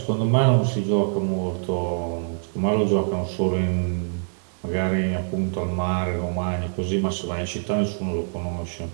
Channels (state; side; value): silent; left; digital silence